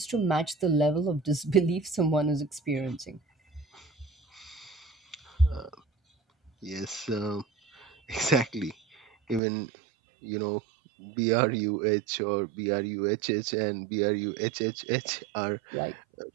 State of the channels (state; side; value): drops out; left; at 9.4 s